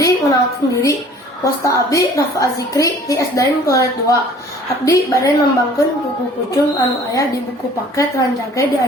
ngenalkeun diri. Wasta abdi Rafa Azikri di SDN Kelas 2. Abdi bade nembangkeun buku pucung anu aya di buku paket Ranjage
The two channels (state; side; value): normal; both; correlation 0.51